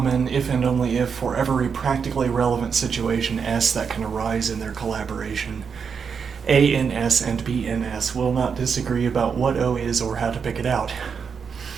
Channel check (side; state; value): left; quieter; 6.3 dB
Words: if and only if for every practically relevant situation S that can arise in their collaboration. A in S and B in S will not disagree about what O is or how to pick it out.